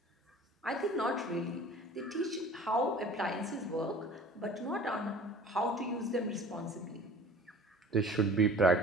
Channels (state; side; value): normal; both; correlation 0.45